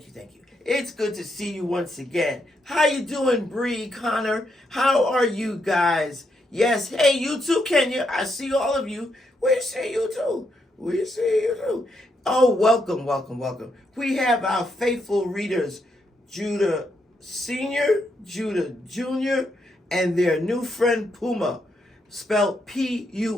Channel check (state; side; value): normal; both; correlation 0.79